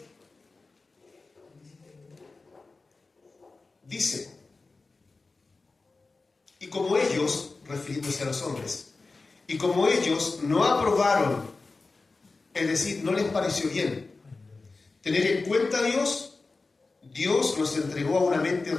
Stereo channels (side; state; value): right; quieter; 3.7 dB